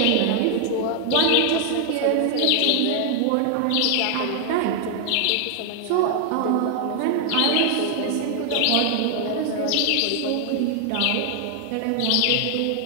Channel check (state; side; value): different; both; correlation 0.00